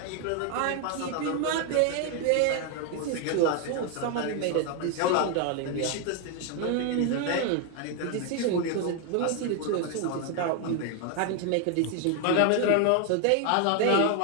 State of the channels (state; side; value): different; both; correlation 0.01